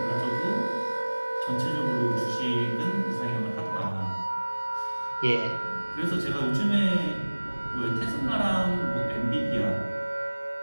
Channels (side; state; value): both; inverted; correlation -1.00